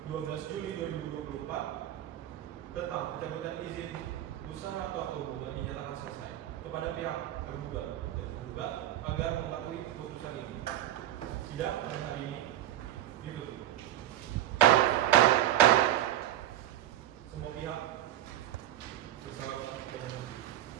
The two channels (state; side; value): quieter; left; 12.7 dB